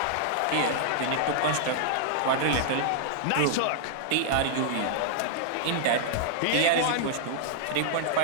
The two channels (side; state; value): both; different; correlation -0.01